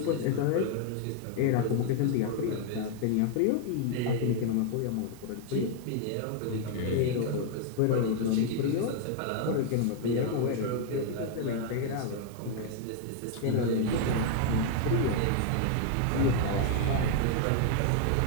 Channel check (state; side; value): different; both; correlation 0.00